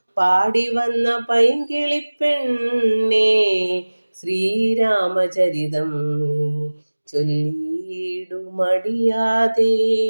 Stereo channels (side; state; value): both; inverted; correlation -1.00